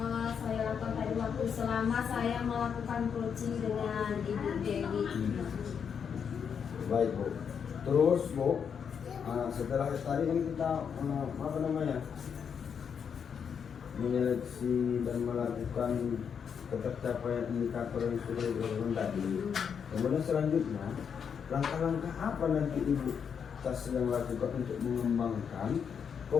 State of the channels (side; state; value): right; quieter; 7.1 dB